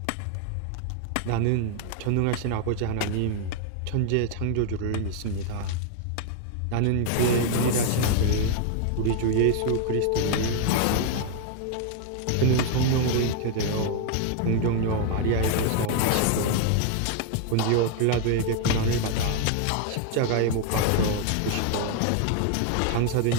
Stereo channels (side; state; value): both; different; correlation 0.00